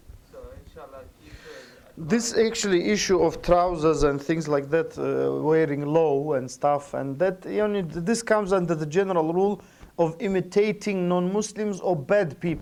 So inshallah, keep This actually issue of trousers and things like that, wearing low and stuff, and that, this comes under the general rule of imitating non-Muslims or bad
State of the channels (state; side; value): identical; both; correlation 1.00